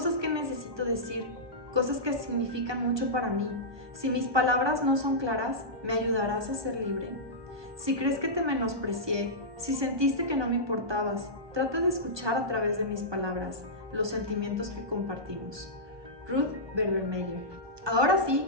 que necesito decir, cosas que significan mucho para mí. Si mis palabras no son claras, ¿me ayudarás a ser libre? Si crees que te menosprecié, si sentiste que no me importabas, trata de escuchar a través de mis palabras los sentimientos que compartimos. Ruth Berbermeyer. Ahora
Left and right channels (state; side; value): late; left; 1.2 ms